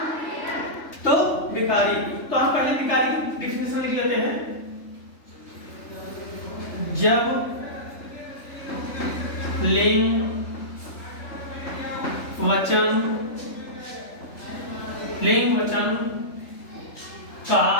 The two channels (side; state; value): right; late; 3.3 ms